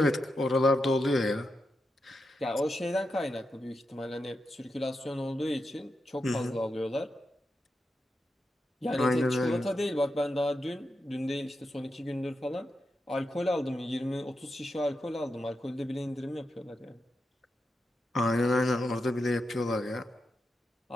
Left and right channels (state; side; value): normal; both; correlation 0.87